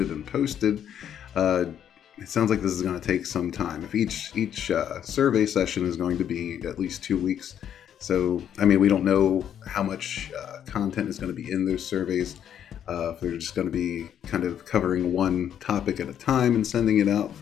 and posted. It sounds like this is going to take some time. If each survey session is going to be at least 2 weeks, So, I mean, we don't know how much content is going to be in those surveys. If they're just going to be kind of covering one topic at a time and sending it out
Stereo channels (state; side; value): quieter; right; 9.5 dB